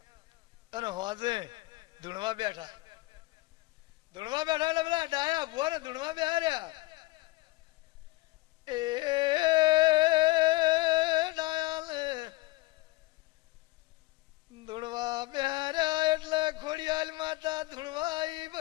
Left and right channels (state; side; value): quieter; right; 20.3 dB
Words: અને હોજે ધૂણવા બેઠા. ધૂણવા બેઠા એટલે પેલા ડાયા ભુવા ને ધૂણવા બેહાર્યા. એ ડાયાને ધૂણવા બેહાર્યા એટલે ખોડિયાલ માતા ધૂણવાઈ